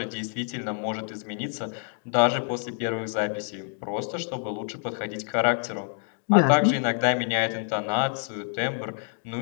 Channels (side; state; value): right; silent; 60 dB below the other